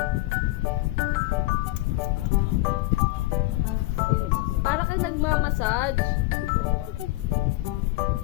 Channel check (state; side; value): quieter; right; 19.4 dB